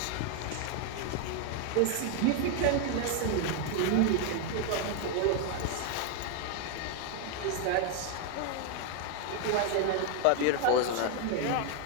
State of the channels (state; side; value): different; both; correlation 0.01